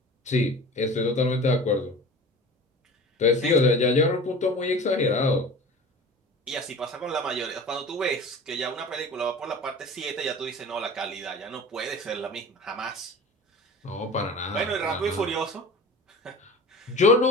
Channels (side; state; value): both; normal; correlation 0.38